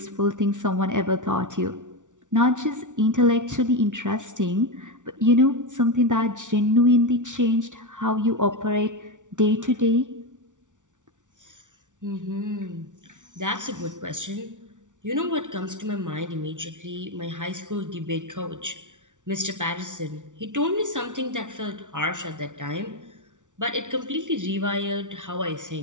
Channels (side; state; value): left; late; 0.87 ms